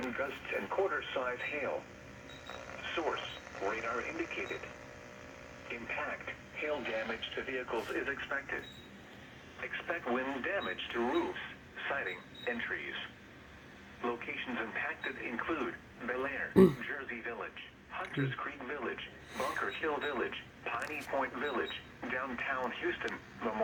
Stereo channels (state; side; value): identical; both; correlation 1.00